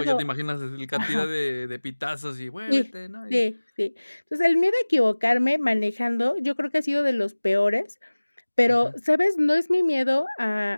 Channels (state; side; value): inverted; both; correlation -1.00